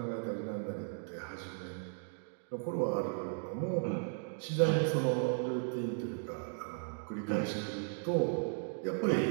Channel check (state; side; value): silent; left; digital silence